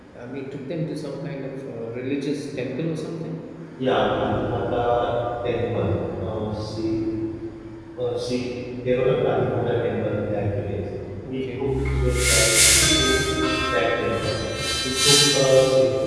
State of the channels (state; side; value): identical; both; correlation 1.00